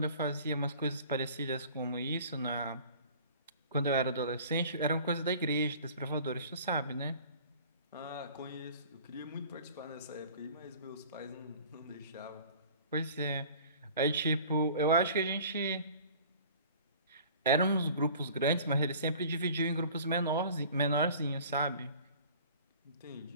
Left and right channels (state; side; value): inverted; both; correlation -0.46